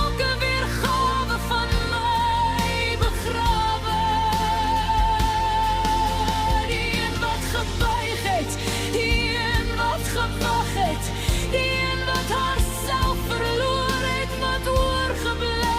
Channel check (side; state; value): both; identical; correlation 1.00